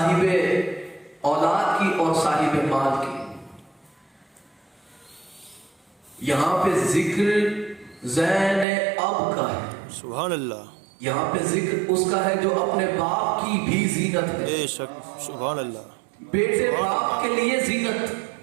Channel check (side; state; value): left; drops out; at 8.7 s